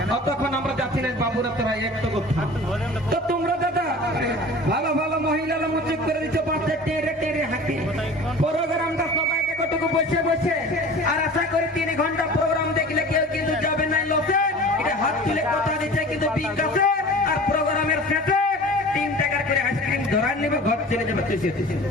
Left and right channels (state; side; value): normal; both; correlation 0.40